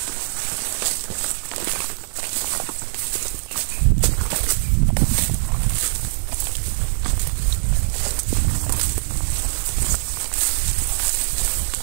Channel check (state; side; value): silent; left; digital silence